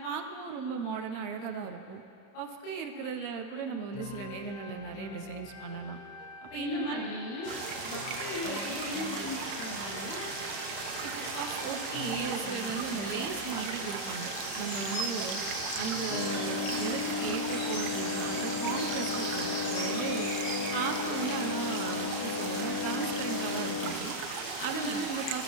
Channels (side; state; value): right; late; 31 ms